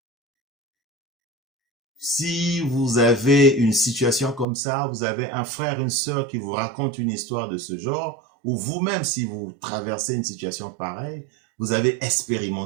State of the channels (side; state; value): left; drops out; at 4.5 s